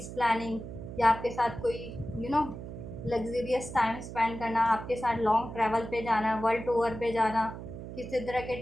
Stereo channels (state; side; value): noise; right; hum, 10 dB below the sound